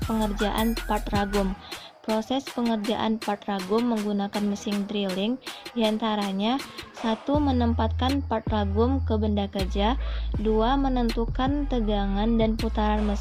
pengerjaan part ragum. Proses pengerjaan part ragum menggunakan mesin drilling diantaranya: 1. Menempatkan part ragum ke benda kerja. 2. Menentukan tegangan dan putaran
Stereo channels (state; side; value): identical; both; correlation 1.00